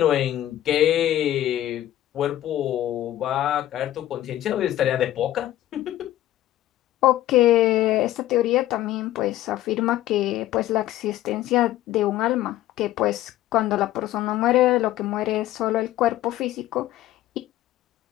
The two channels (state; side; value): quieter; right; 13.8 dB